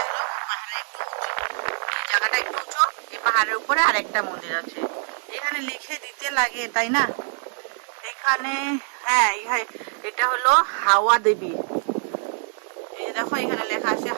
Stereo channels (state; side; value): silent; left; 62 dB below the other